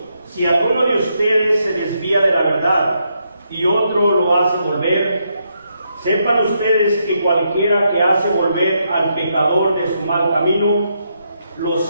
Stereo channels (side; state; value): both; inverted; correlation -0.79